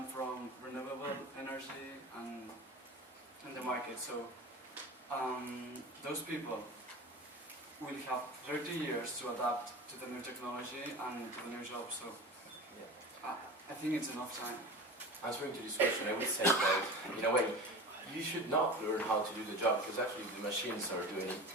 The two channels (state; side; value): normal; both; correlation 0.32